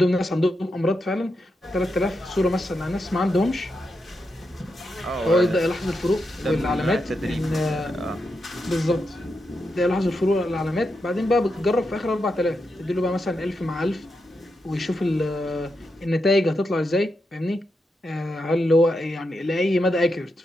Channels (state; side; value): normal; both; correlation 0.85